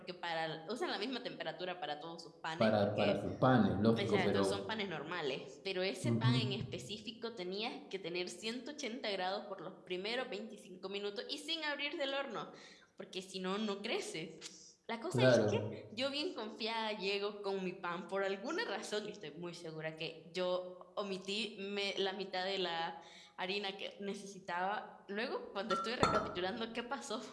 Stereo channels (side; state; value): both; identical; correlation 1.00